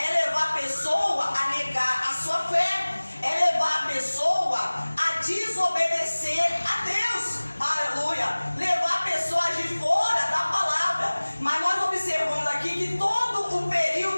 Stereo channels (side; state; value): both; inverted; correlation -1.00